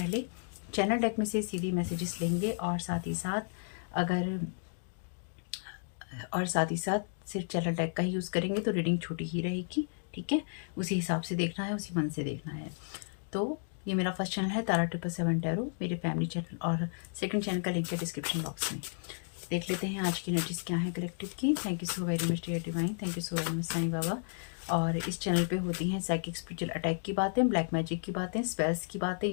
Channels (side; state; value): right; silent; digital silence